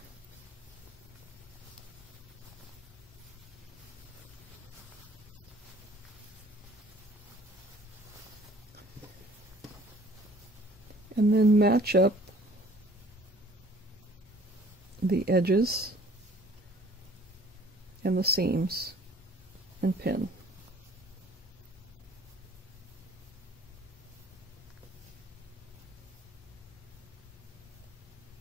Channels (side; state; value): both; normal; correlation 0.54